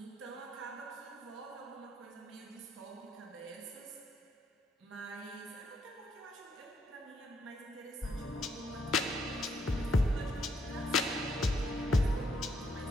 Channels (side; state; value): both; normal; correlation 0.74